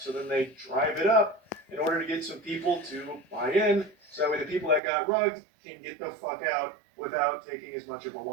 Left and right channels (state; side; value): drops out; left; at 4.8 s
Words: then they drive it up in order to get some people to buy in, so that way the people that got rugged can get the fuck out without taking as much of a